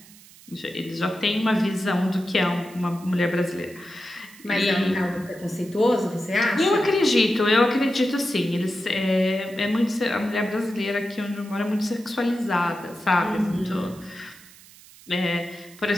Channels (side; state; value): right; noise; hiss, 22 dB below the sound